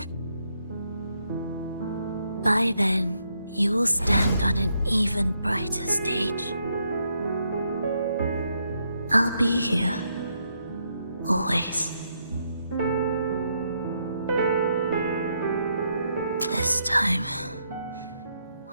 then, you will stand on an even brighter stage. I'll be here. Always. This time,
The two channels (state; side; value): inverted; both; correlation -0.77